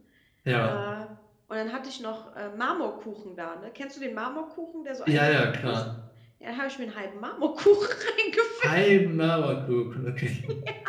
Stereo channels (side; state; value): both; identical; correlation 1.00